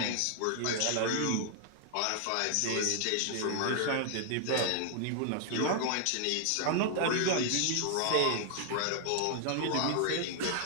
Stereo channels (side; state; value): both; different; correlation 0.00